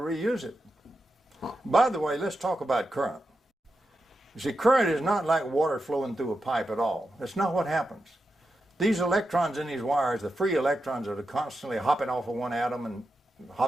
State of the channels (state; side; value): normal; both; correlation 0.88